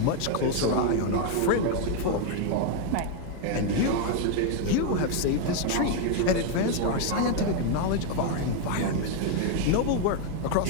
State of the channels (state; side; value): different; both; correlation 0.01